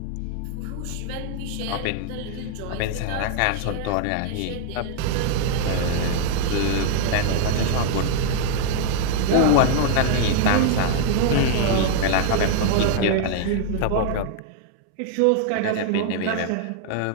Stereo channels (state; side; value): different; both; correlation 0.00